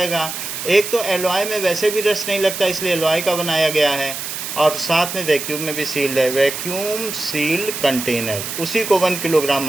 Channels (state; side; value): noise; right; hiss, 6 dB below the sound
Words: एक तो एलॉय में वैसे भी रस्ट नहीं लगता, इसलिए एलॉय का बनाया गया है, और साथ में वैक्यूम में भी सील्ड है. वैक्यूम सील्ड कंटेनर, उसी को 1 किलोग्राम